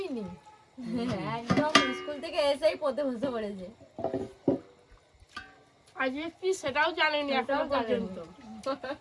নি, একদম স্কুল থেকে এসেই পড়তে বসে পড়েছে। আজকে কি সেটাও জানেনি এখনো সেটাও জানেনি। পর্যন্ত।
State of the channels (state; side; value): identical; both; correlation 1.00